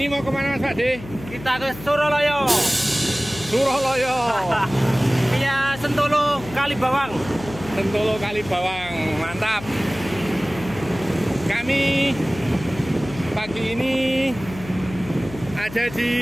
mau kemana Mas Pak De? Kita ke Suraloyo. Suraloyo. Via Sentolo Kalibawang. Sentolo Kalibawang, mantap. Kami pagi ini ada di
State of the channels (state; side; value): noise; left; hum, 14 dB below the sound